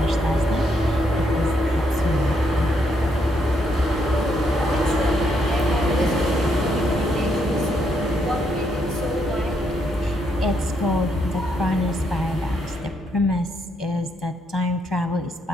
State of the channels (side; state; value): both; normal; correlation 0.76